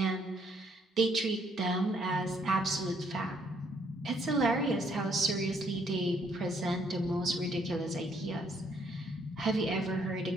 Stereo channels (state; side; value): normal; both; correlation 0.68